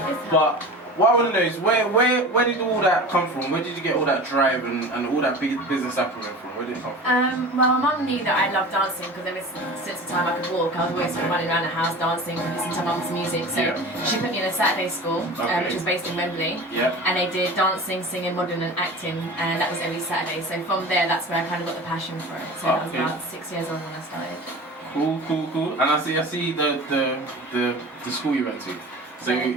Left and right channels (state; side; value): normal; both; correlation 0.35